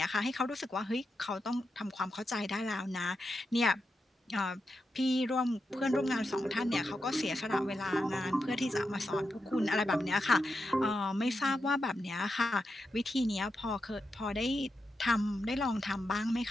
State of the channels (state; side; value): normal; both; correlation 0.87